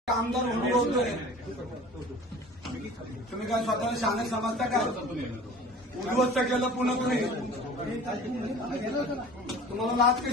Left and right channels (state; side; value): normal; both; correlation 0.43